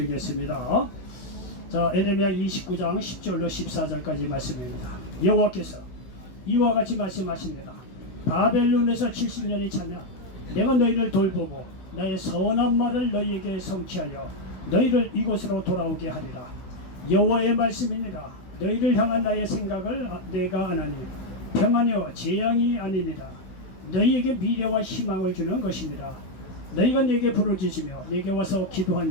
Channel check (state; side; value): late; right; 16 ms